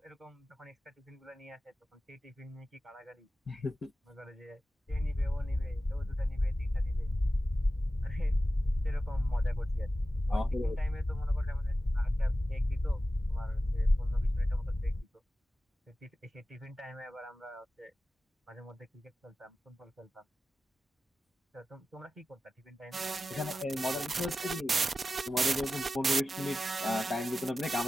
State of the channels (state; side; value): normal; both; correlation 0.94